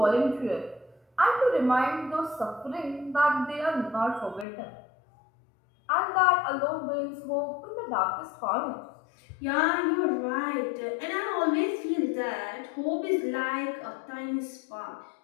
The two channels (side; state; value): right; drops out; at 4.5 s